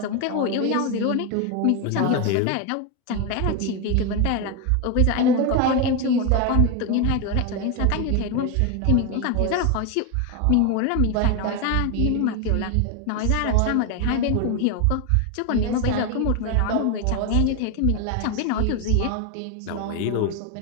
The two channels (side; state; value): both; different; correlation 0.01